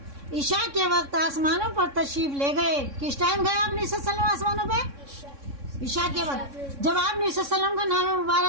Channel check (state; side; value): late; left; 3.6 ms